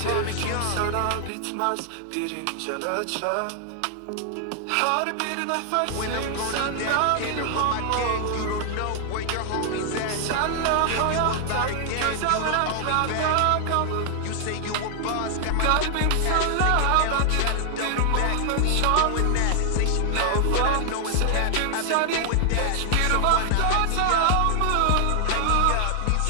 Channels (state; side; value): different; both; correlation 0.00